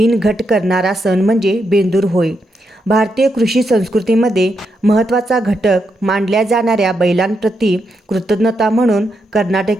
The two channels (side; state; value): both; normal; correlation 0.82